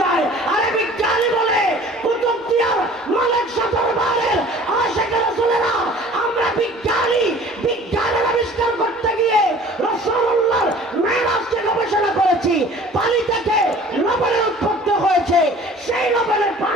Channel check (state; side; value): normal; both; correlation 0.47